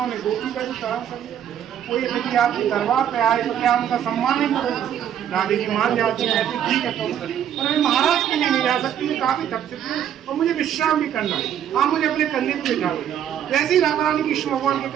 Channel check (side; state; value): left; quieter; 9.8 dB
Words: गोपी का भी सहन कर लिया। कोई यदि आपके दरबार पे आए तो क्या उनका सम्मान नहीं करोगे? राधे जी मान जाती है, कहते ठीक है तो पर मैं महाराज के लिए नहीं जा सकती, मैं काफी थक चुकी हूँ और मुझे विश्राम भी करना है। आप मुझे अपने कंधे पे बिठा दो। वैसे ही राधा रानी कृष्ण भगवान के